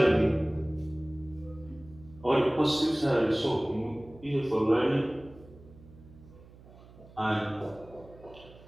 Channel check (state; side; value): noise; right; hum, 22 dB below the sound